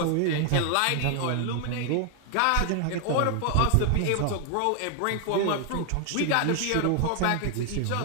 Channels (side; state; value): both; different; correlation 0.00